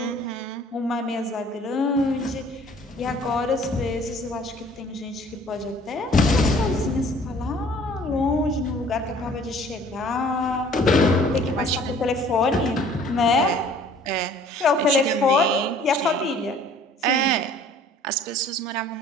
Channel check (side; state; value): both; normal; correlation 0.54